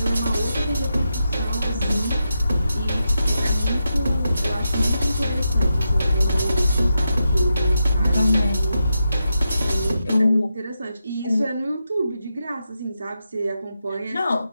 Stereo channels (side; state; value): both; inverted; correlation -0.87